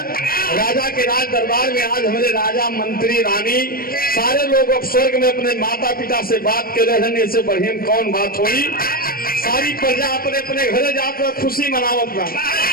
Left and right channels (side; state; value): right; late; 0.43 ms